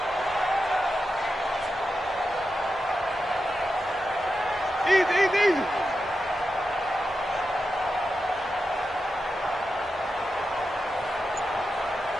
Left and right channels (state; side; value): normal; both; correlation 0.89